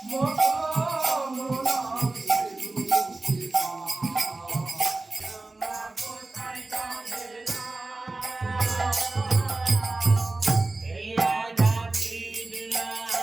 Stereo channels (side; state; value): left; quieter; 3.2 dB